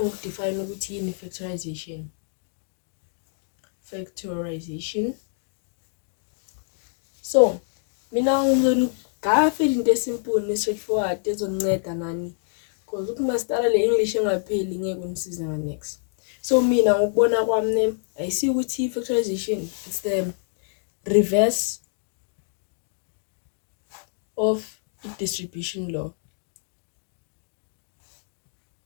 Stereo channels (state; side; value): silent; right; digital silence